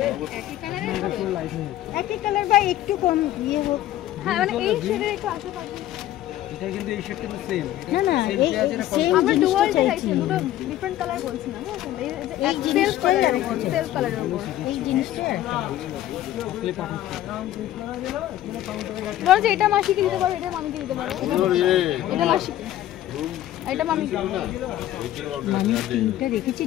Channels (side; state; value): right; quieter; 13.5 dB